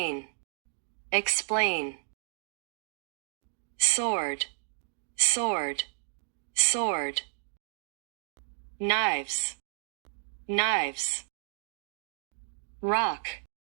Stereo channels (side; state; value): left; silent; 56 dB below the other